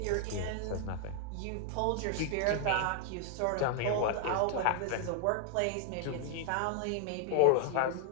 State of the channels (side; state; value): both; different; correlation 0.00